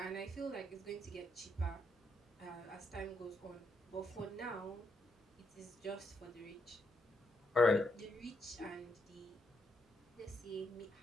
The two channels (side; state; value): both; normal; correlation 0.78